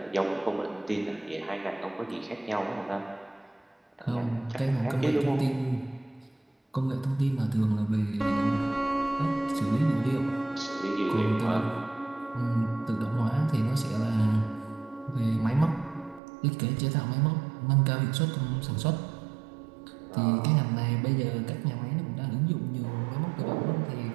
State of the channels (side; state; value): left; drops out; at 16.2 s